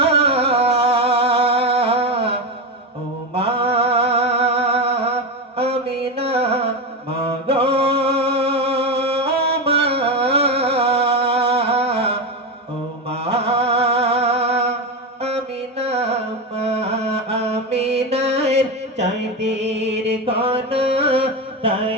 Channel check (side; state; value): both; normal; correlation 0.15